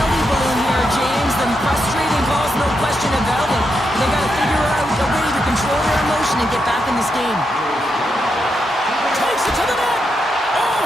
balloon here, James. The frustrating calls, no question about it. They got to figure out a way to control their emotion and get back in this game. Takes it to the net. Oh,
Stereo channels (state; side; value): normal; both; correlation 0.83